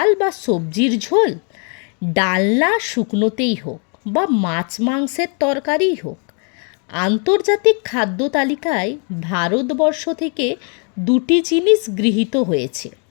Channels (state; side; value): quieter; right; 39.5 dB